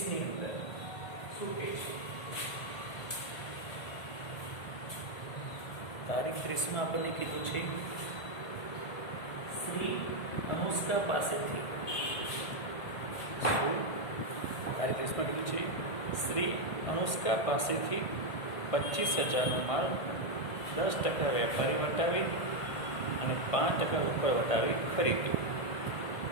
અંદર શું કહે છે તારીખ 30માં આપણને કીધું છે શ્રી અનુષ્કા પાસેથી તારીખ 30માં કીધું છે શ્રી અનુષ્કા પાસેથી 25,000નો માલ 10% વેપારી વટાવી અને 5% રોકડ વટાવી ખરીદ્યો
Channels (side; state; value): right; late; 1.6 ms